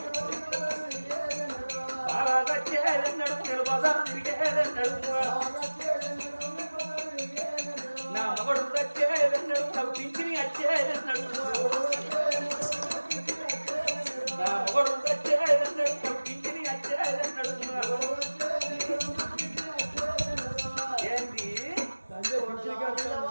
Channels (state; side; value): inverted; both; correlation -1.00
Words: వచ్చేది అన్నాడు, నేను బజారు తిరిగేది అన్నాడు, నా మగడు వచ్చేది అన్నాడు, నాకు పింఛని వచ్చేది అన్నాడు, నా మగడు వచ్చేది అన్నాడు, నాకు పింఛని వచ్చేది అన్నాడు. ఏంటి